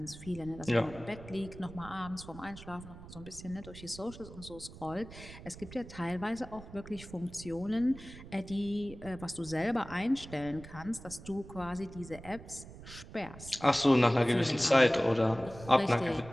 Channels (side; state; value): right; noise; rumble, 15 dB below the sound